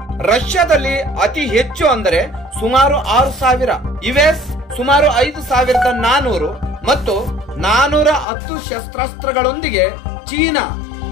ರಷ್ಯಾದಲ್ಲಿ ಅತಿ ಹೆಚ್ಚು ಅಂದರೆ ಸುಮಾರು 6,000, ಯುಎಸ್ ಸುಮಾರು 5,400 ಮತ್ತು 410 ಶಸ್ತ್ರಾಸ್ತ್ರಗಳೊಂದಿಗೆ ಚೀನಾ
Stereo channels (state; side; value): drops out; right; at 8.2 s